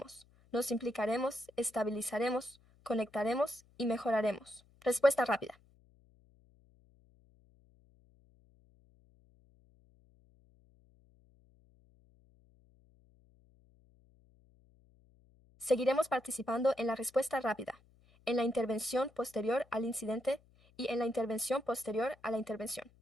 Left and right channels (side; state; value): left; noise; hum, 30 dB below the sound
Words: nos implicaremos, estabilizaremos, conectaremos y mejoraremos. Respuesta rápida. Seguiremos participando en la respuesta rápida, en la intervención posterior al incidente y en la intervención posterior a la intervención.